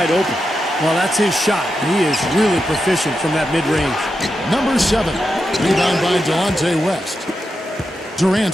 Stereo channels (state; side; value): normal; both; correlation 0.87